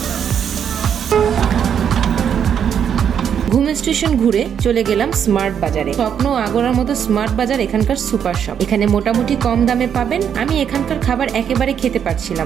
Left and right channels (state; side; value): quieter; left; 8.3 dB